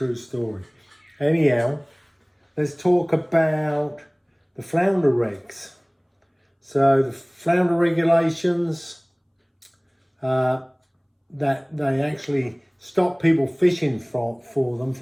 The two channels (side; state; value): both; identical; correlation 1.00